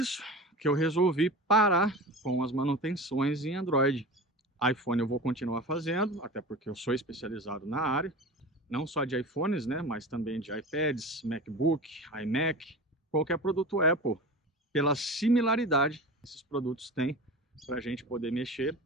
que eu resolvi parar com as manutenções em Android. iPhone eu vou continuar fazendo, até porque eu sou especializado na área, não só de iPhones, né, mas também de iPads, MacBook, iMac, qualquer produto Apple, pela similaridade que esses produtos têm para a gente poder mexer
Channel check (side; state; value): both; normal; correlation 0.32